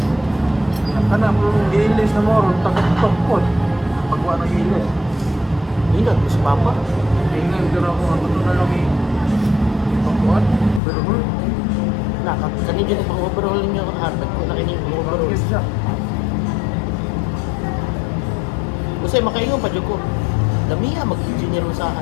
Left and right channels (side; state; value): right; drops out; at 10.8 s